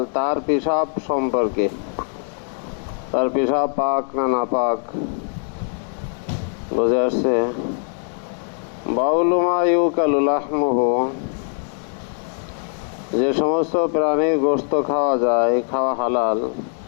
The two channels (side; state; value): right; silent; 55 dB below the other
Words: তার পেশাব সম্পর্কে। তার পেশাব পাক না নাপাক বুঝে আসছে? বাউলু মা ইউকালু লাহমুহু, যে সমস্ত প্রাণীর গোশত খাওয়া যায়, খাওয়া হালাল,